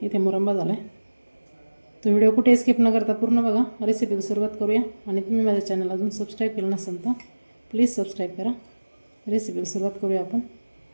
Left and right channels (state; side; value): inverted; both; correlation -1.00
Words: इथे मुरंबा झाला आहे। तो व्हिडिओ कुठे स्किप न करता पूर्ण बघा। रेसिपीला सुरुवात करूया। आणि तुम्ही माझ्या चॅनल अजून सबस्क्राईब केलं नसेल तर प्लीज सबस्क्राईब करा। रेसिपीला सुरुवात करूया आपण।